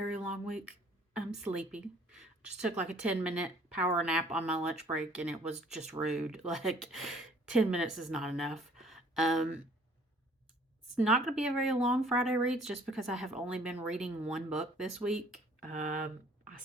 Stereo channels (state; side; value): normal; both; correlation 0.56